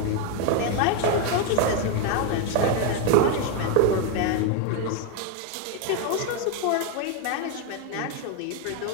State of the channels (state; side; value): different; both; correlation 0.02